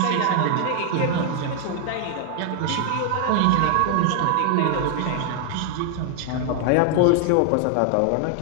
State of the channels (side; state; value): both; different; correlation 0.00